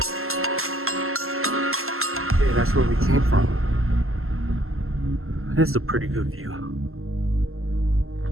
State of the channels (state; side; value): late; left; 0.62 ms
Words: That's where we came from. This is a pretty good view.